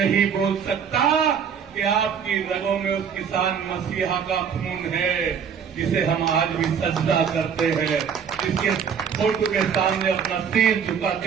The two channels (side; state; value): left; quieter; 7.3 dB